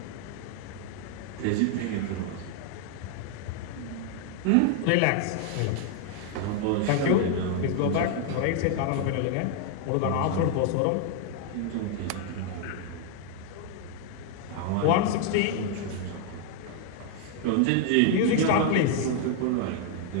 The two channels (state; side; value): different; both; correlation 0.00